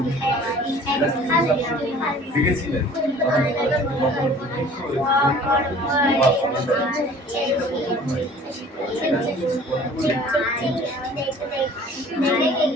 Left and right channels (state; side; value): normal; both; correlation 0.49